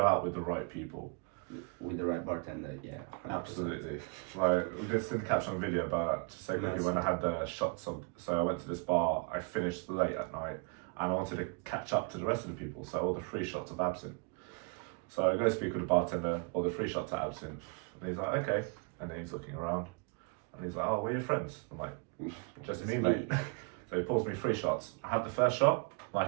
out with the right people. with the right bartender, yeah. 100%. Absolutely. Like we did send caption on video about, to say quickly, when I had the shots of, so I went to this bar, I finished late at night, and I wanted to catch up to the rest of the people, so I ordered 3 shots of absinthe. So I go speak with the bartender, order 3 shots of absinthe, and he's like, okay. And then he's looking around, and he's like, oh, we're your friends. I'm like, just me, mate. So he pours me 3 shots. I had the first shot,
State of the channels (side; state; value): left; quieter; 33.3 dB